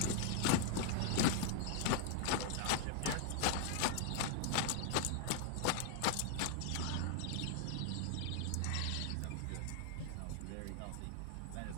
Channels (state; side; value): different; both; correlation 0.00